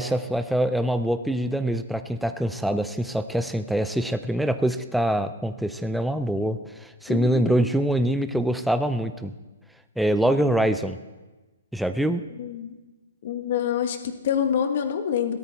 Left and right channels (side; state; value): both; normal; correlation 0.63